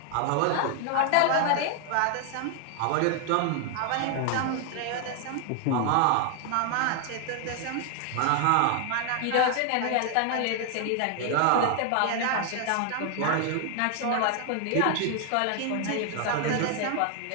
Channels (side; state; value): both; different; correlation 0.00